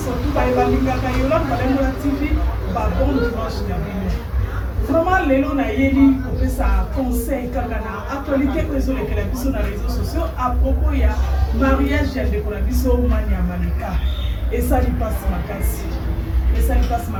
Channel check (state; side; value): identical; both; correlation 1.00